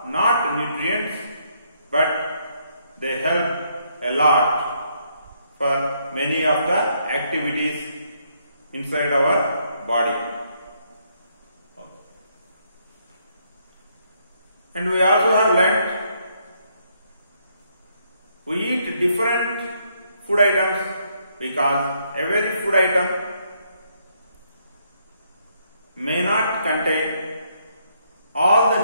not nutrients, but they help a lot for many of the activities inside our body. And we also have learnt we eat different food items because every food item may not contain all the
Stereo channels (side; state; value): both; inverted; correlation -0.73